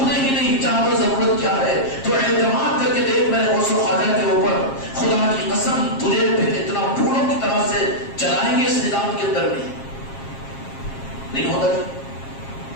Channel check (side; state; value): right; late; 7.4 ms